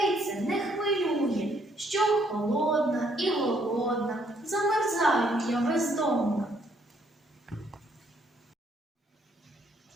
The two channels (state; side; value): normal; both; correlation 0.68